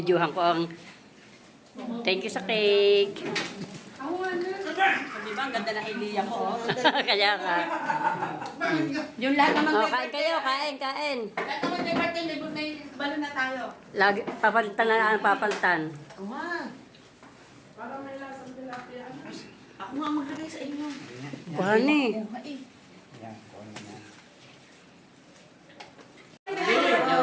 ko ang thank you sa cake. Di ba, ang ganda ng idea ko. Kaya ka. Yung lahat naman. Oh, kain kayo, kain. Lahat naman may birthday, may balon na tayo. Lagi, papalitan na papalitan. Para may lasang tilapia. Ako nga maglagay sa inyo. Kuhan eh.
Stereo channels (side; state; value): both; identical; correlation 1.00